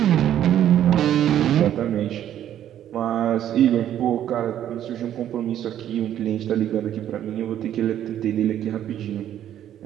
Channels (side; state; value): left; quieter; 11.0 dB